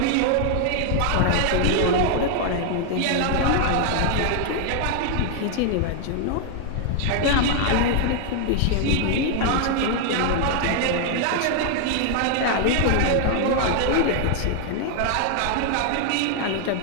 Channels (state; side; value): different; both; correlation 0.00